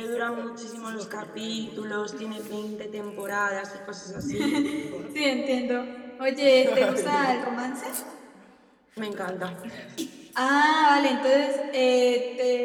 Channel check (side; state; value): both; identical; correlation 1.00